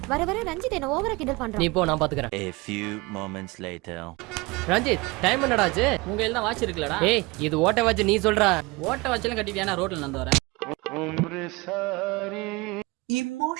வர வர ரஞ்சித் என்ன ஓவரா கிண்டல் பண்றான். நீ போ, நான் பாத்துக்கறேன். A few moments later. Ranjith, time என்னடா ஆச்சு? உங்க கையில தான் வாட்ச் இருக்குலடா. ஏய், இது ஓட்ட வாட்ச். நீ சொல்ற ஓட்ட வாட்ச்லாம் கட்டிட்டியானா? ரோட்ல நடந்து வரேன்.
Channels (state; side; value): quieter; left; 24.3 dB